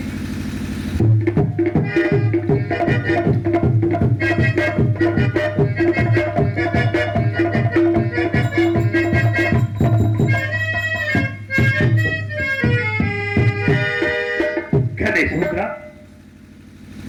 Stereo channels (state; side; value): identical; both; correlation 1.00